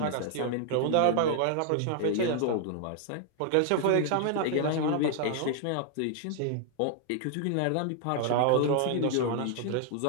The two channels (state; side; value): different; both; correlation 0.00